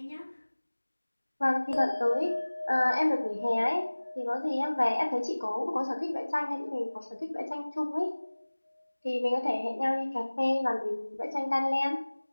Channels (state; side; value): inverted; both; correlation -1.00